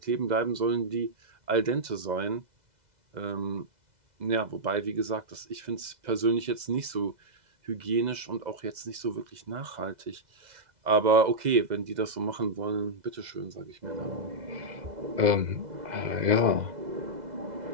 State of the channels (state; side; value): late; left; 2.0 ms